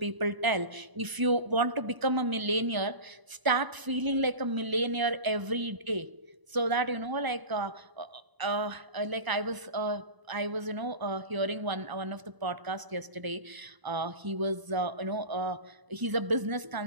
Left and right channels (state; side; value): late; left; 1.0 ms